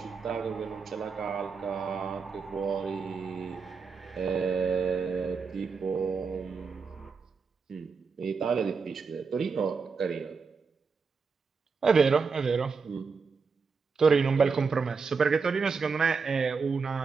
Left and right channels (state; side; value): quieter; left; 5.1 dB